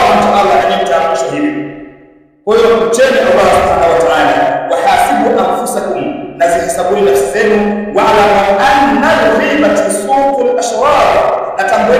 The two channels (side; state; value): both; identical; correlation 1.00